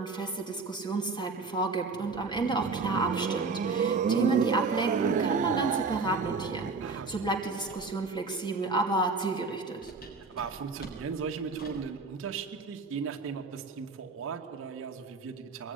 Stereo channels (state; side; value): quieter; left; 4.2 dB